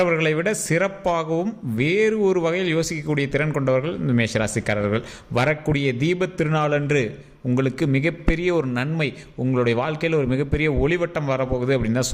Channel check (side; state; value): both; identical; correlation 1.00